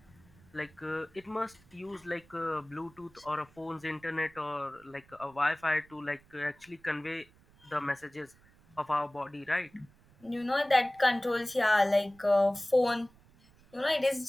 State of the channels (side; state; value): right; noise; rumble, 28 dB below the sound